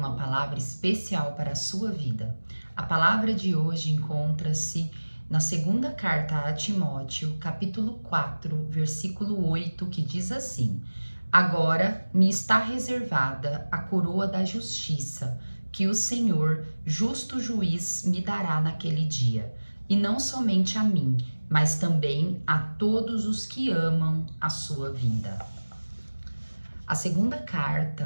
palavra especial para a sua vida. A palavra de hoje encontra-se na segunda carta a Timóteo, capítulo 4, versículo 8, que diz assim: Agora me está reservada a coroa da justiça, que o Senhor, justo juiz, me dará naquele dia, e não somente a mim, mas também a todos os que amam a sua vinda. A segunda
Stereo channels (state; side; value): inverted; both; correlation -1.00